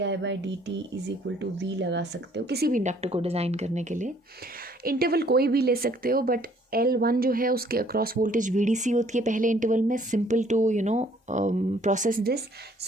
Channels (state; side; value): normal; both; correlation 0.61